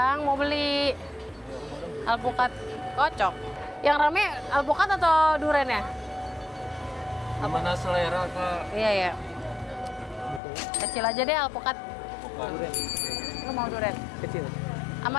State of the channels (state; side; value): drops out; right; at 10.4 s